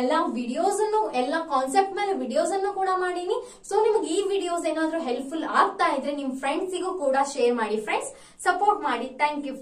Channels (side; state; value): both; identical; correlation 1.00